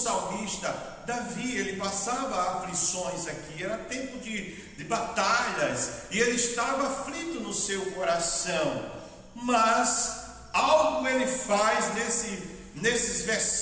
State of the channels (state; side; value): identical; both; correlation 1.00